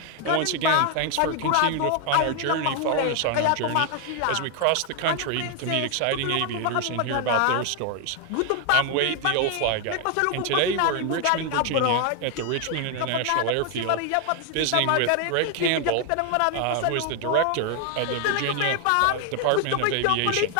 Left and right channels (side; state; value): both; different; correlation 0.00